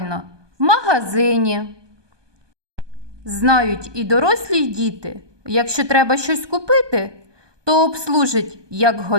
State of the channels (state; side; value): late; left; 1.2 ms